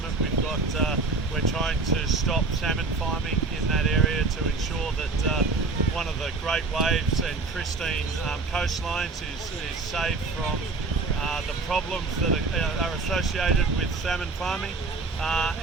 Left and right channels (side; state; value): left; quieter; 3.9 dB